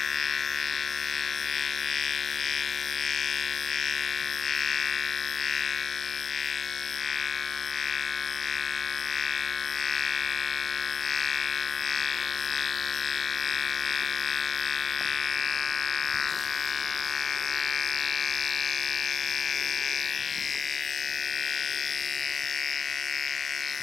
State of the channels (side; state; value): right; quieter; 6.3 dB